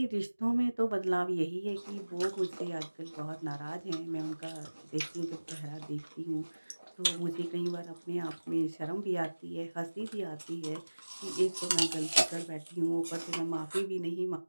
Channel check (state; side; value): inverted; both; correlation -1.00